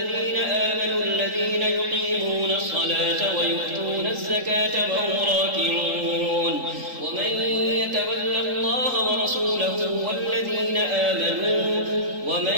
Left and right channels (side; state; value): left; late; 3.8 ms